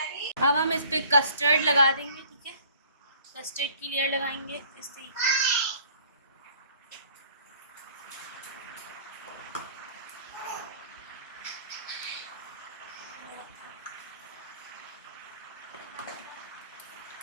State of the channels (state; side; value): inverted; both; correlation -0.54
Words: अब हम इस पे कस्टर्ड लगा देंगे, ठीक है। कस्टर्ड की लेयर लगाएंगे इस तरीके से।